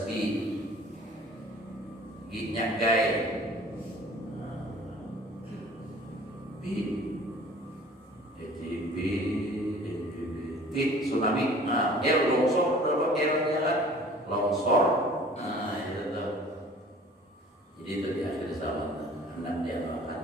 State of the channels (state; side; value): normal; both; correlation 0.48